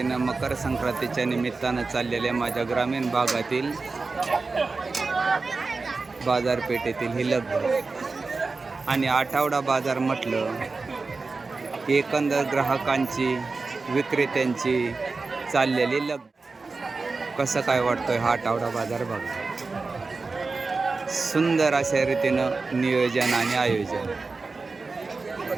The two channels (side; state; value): left; quieter; 4.0 dB